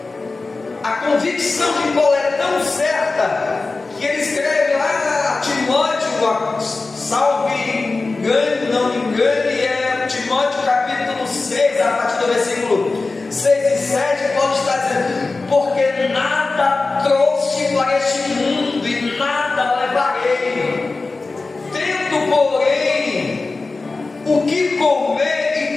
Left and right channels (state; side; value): quieter; right; 3.7 dB